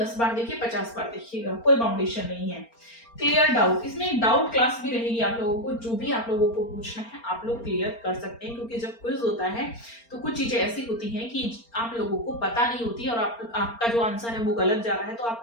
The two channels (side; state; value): right; late; 4.3 ms